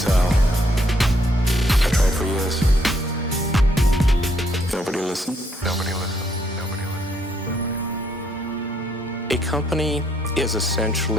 I tried for years. Nobody listened. A company is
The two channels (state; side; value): normal; both; correlation 0.71